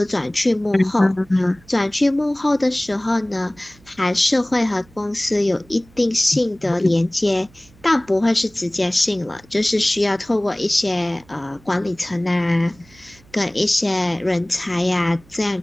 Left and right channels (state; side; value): noise; right; hum, 27 dB below the sound